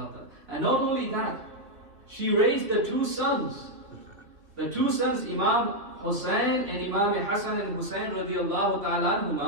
ta'ala. And not only that, she raised the two sons. The two sons, Imam Hussain and Imam Hassan and Hussain radiallahu ta'ala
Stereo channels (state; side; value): late; left; 3.1 ms